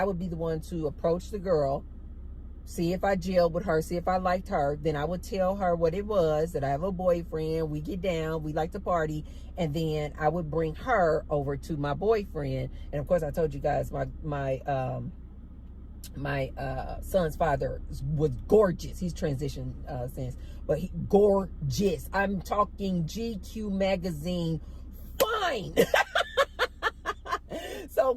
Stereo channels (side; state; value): both; identical; correlation 1.00